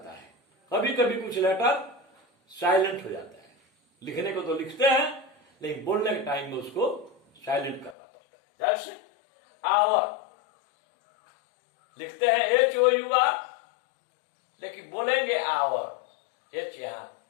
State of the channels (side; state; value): right; drops out; at 8.0 s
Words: है। कभी कभी कुछ लेटर साइलेंट हो जाता है। लिखने को तो लिखते हैं लेकिन बोलने के टाइम में उसको साइलेंट करना पड़ता है। जैसे आवर लिखते हैं HOUR, लेकिन बोलेंगे आवर, H यहां